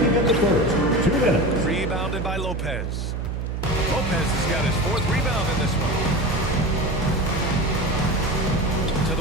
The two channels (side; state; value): right; noise; hum, 3 dB below the sound